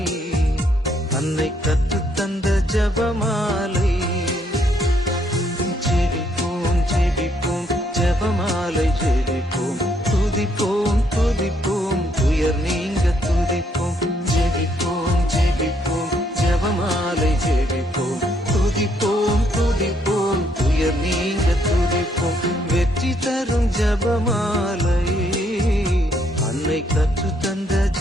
அன்னை கற்றுத்தந்த ஜபமாலை. ஜெபிப்போம் ஜெபிப்போம் ஜபமாலை ஜெபிப்போம், துதிப்போம் துதிப்போம் துயர் நீங்க துதிப்போம். ஜெபிப்போம் ஜெபிப்போம் ஜபமாலை ஜெபிப்போம், துதிப்போம் துதிப்போம் துயர் நீங்க துதிப்போம். வெற்றி தரும் ஜபமாலை, அன்னை கற்றுத்தந்த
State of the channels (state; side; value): normal; both; correlation 0.71